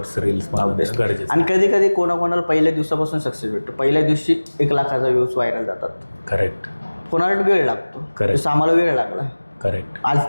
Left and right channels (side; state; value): both; inverted; correlation -1.00